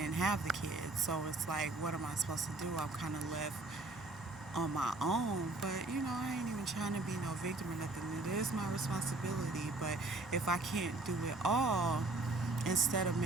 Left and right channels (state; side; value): quieter; left; 3.1 dB